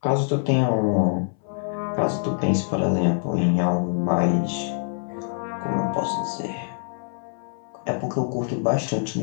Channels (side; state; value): right; silent; 61 dB below the other